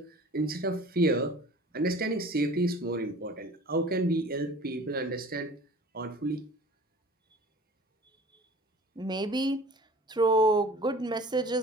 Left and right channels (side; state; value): both; normal; correlation 0.44